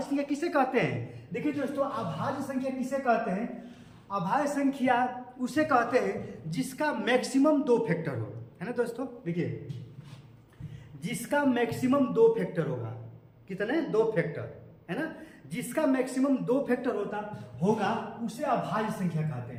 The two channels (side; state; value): both; identical; correlation 1.00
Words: संख्या किसे कहते हैं। देखिए दोस्तों, अभाज्य संख्या किसे कहते हैं? अभाज्य संख्या उसे कहते हैं जिसका मैक्सिमम 2 फैक्टर हो, है ना दोस्तों। देखिए, जिसका मैक्सिमम 2 फैक्टर होगा। कितने? 2 फैक्टर, है ना। जिसका मैक्सिमम 2 फैक्टर होगा उसे अभाज्य संख्या कहते